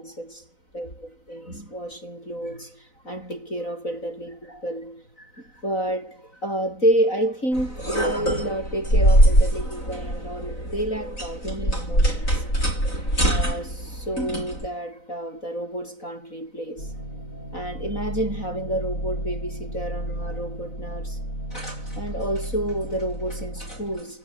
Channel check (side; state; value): right; late; 4.0 ms